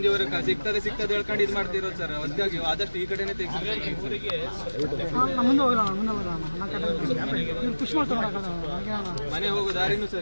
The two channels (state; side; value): inverted; both; correlation -1.00